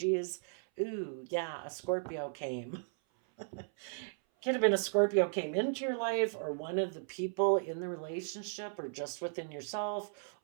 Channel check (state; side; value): silent; left; 54 dB below the other